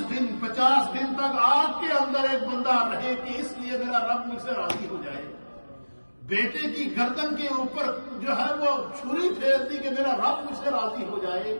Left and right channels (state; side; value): inverted; both; correlation -1.00